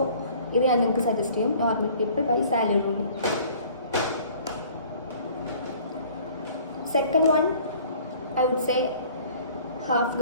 ഇത് ഞാൻ നിങ്ങൾക്ക് സജസ്റ്റ് ചെയ്യും, normal people by Sally Rooney. Second one I would say half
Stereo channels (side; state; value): both; inverted; correlation -0.52